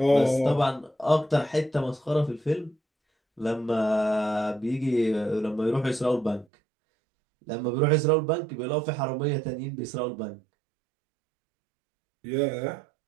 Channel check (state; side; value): drops out; left; at 6.5 s